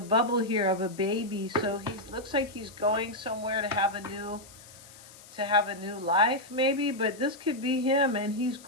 here of a baby. So he looks like he's going somewhere to have a new life, maybe. But this could be him, and he's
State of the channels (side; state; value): left; noise; hiss, 21 dB below the sound